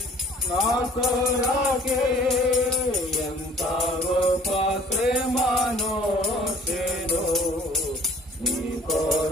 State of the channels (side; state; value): both; normal; correlation 0.53